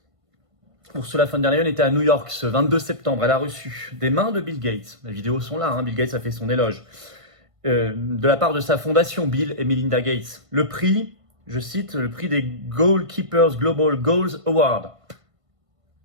Ursula von der Leyen était à New York ce 22 septembre. Elle a reçu des mains de Bill Gates. Les vidéos sont là, Bill Gates a fait son éloge. De la part de sa fondation, Bill et Melinda Gates. Le prix, je cite, le prix des Goalkeepers Global Goals Award.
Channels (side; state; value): left; late; 1.5 ms